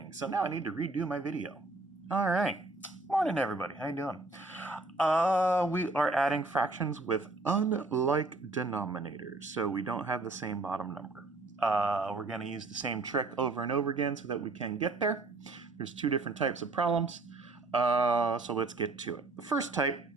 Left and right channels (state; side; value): quieter; left; 3.2 dB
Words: So now I need to redo my video. All right. Morning, everybody. How you doing? We are adding fractions with unlike denominators, so we don't have the same bottom number. We're going to use the same trick over and over again so that we can get there. There's two different types of problems, so let's get to it. The first type,